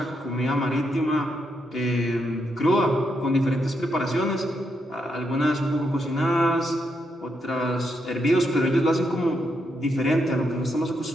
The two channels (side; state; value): both; normal; correlation 0.80